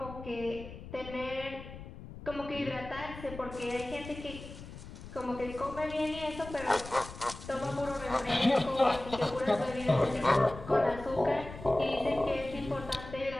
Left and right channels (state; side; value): noise; left; rumble, 13 dB below the sound